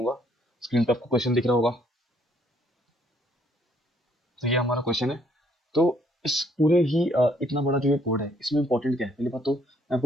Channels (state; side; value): normal; both; correlation 0.67